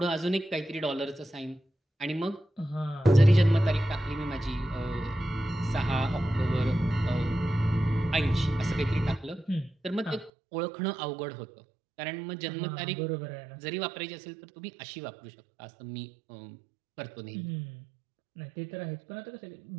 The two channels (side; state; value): left; drops out; at 10.3 s